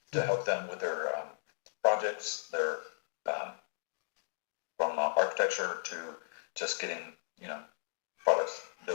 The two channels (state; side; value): silent; right; digital silence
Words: to help them with their projects, their um, from architecture to just getting, you know, products